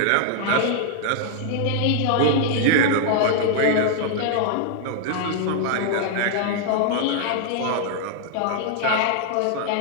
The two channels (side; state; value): both; different; correlation -0.01